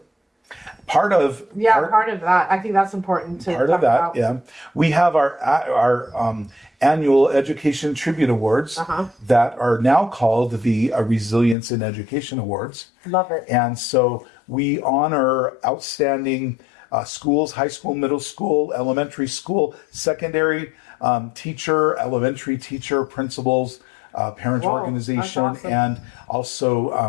part of part of that. I think that's important to part talk of that. about. Yeah, we have our annual Education Tribute Awards that are now called the Resilience in Education Awards. Love it. And so we honor outstanding schools, high school, middle school, elementary school, secondary teacher, elementary teacher, principals, parent organization, awesome. and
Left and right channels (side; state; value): right; drops out; at 11.6 s